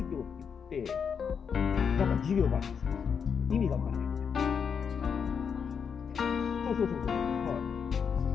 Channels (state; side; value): quieter; right; 6.7 dB